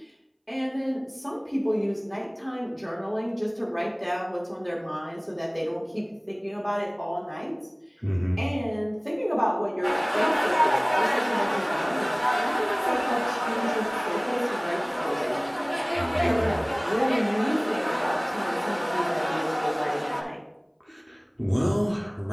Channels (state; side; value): identical; both; correlation 1.00